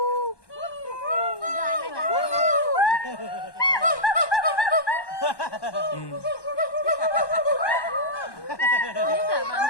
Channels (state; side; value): late; right; 1.1 ms